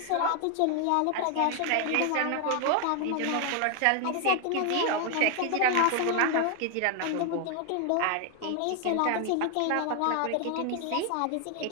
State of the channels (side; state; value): both; different; correlation 0.00